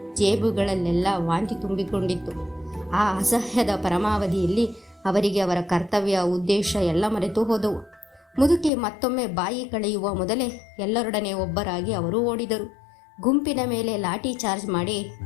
ಜೇಬುಗಳಲ್ಲೆಲ್ಲ ವಾಂತಿ ತುಂಬಿಕೊಂಡಿತ್ತು. ಆ ಅಸಹ್ಯದ ಪರಮಾವಧಿಯಲ್ಲಿ ಅವರಿಗೆ ಅವರ ಕರ್ತವ್ಯ ಉದ್ದೇಶ ಎಲ್ಲ ಮರೆತು ಹೋದವು. ಮುದುಕಿ ಮತ್ತೊಮ್ಮೆ ಬಾಯಿ ಕಳೆಯುವ ಮೊದಲೇ ಎಲ್ಲರೊಡನೆ ಒಬ್ಬರಾಗಿ ಅವರು ಓಡಿದರು. ಗುಂಪಿನ ಮೇಲೆ ಲಾಠಿ ಚಾರ್ಜ್ ಮಾಡಿ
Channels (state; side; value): drops out; right; at 8.7 s